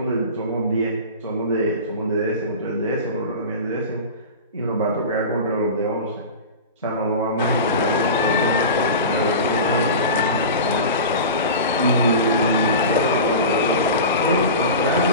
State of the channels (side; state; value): both; inverted; correlation -0.30